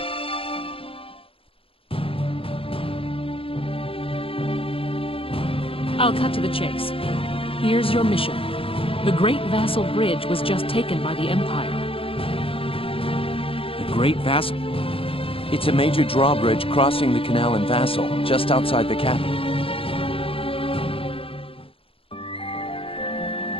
I'll cut to the chase. Here's your mission. The Great Vassal Bridge was just taken by the Empire. The Great Vassal? It's a major drawbridge crossing the canal in Vassal, just outside the capital.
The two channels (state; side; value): late; right; 0.27 ms